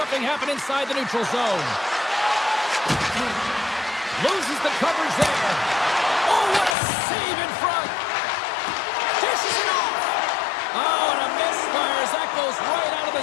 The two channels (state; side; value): drops out; right; at 6.8 s